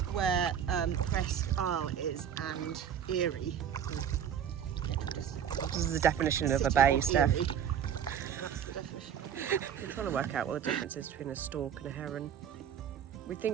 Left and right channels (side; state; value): left; quieter; 8.7 dB